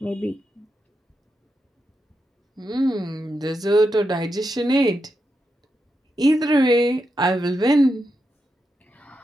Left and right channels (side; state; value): both; normal; correlation 0.86